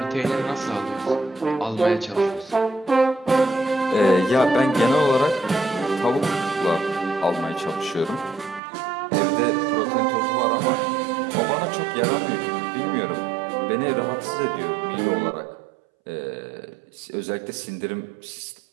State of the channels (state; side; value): drops out; left; at 8.6 s